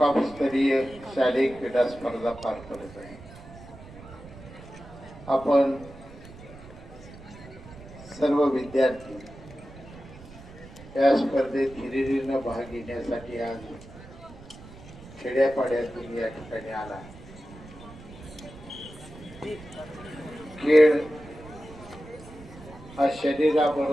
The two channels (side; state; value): right; noise; rumble, 18 dB below the sound